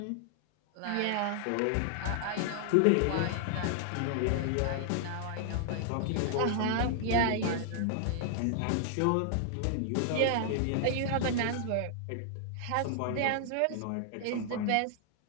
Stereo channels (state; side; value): different; both; correlation 0.00